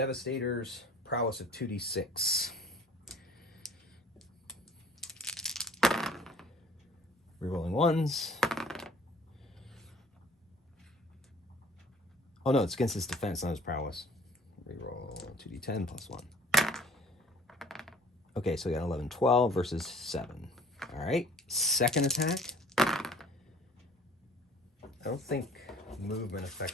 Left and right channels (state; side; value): normal; both; correlation 0.50